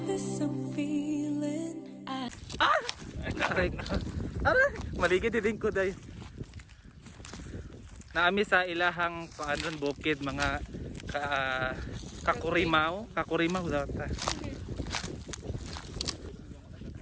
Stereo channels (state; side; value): identical; both; correlation 1.00